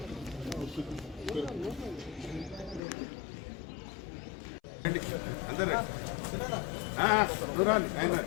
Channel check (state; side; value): drops out; right; at 2.8 s